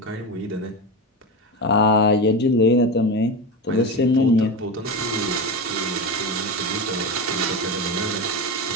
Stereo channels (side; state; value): both; normal; correlation 0.19